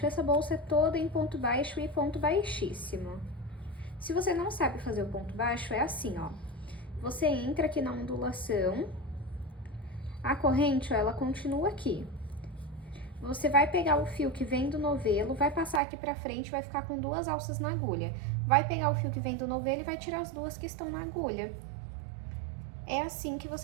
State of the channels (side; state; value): left; drops out; at 15.8 s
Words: Essa bolsa é toda em ponto baixo e ponto baixíssimo. Se você não sabe fazer o ponto baixo, é assim, ó. você entra aqui na ondulação, a corrente, ó, ela continua aqui. Você vai pegar o fio que vem do novelo, vai passar aqui pra frente, vai ficar com 2 alças na agulha. Vai pegar o fio que vem do novelo e vai tirar as 2 que estão na agulha. É assim que